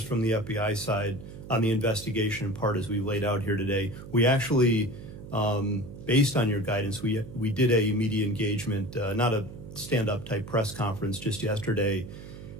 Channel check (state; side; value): noise; right; hum, 13 dB below the sound